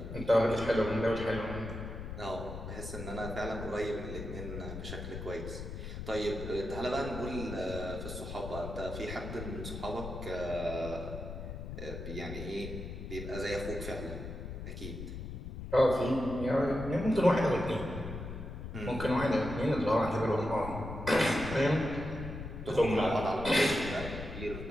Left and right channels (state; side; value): noise; left; rumble, 8 dB below the sound